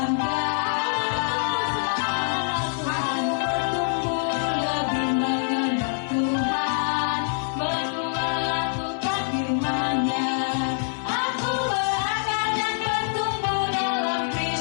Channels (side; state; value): right; silent; digital silence